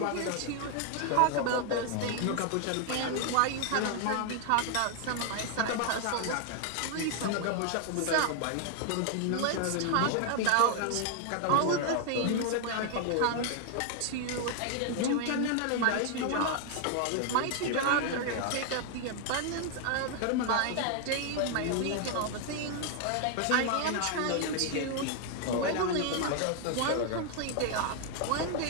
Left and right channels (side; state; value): both; different; correlation 0.00